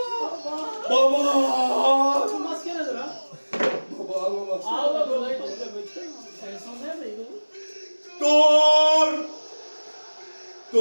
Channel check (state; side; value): inverted; both; correlation -1.00